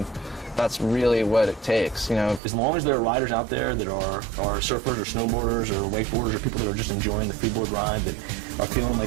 that's really what it takes. As long as there are riders out there that are surfers or snowboarders or wakeboarders or people that are just enjoying the freeboard ride, that are feeling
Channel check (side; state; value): left; drops out; at 2.4 s